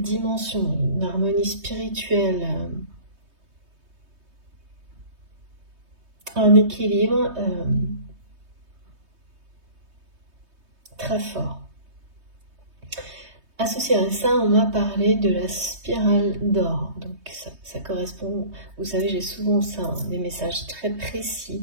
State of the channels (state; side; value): late; left; 3.2 ms